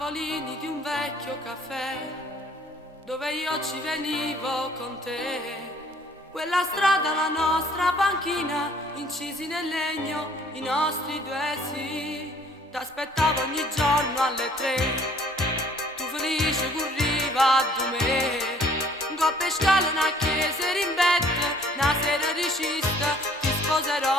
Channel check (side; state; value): both; normal; correlation 0.58